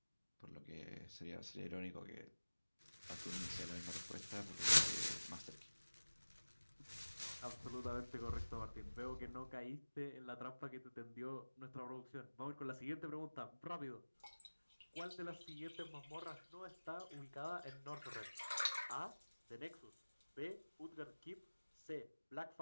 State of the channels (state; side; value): inverted; both; correlation -1.00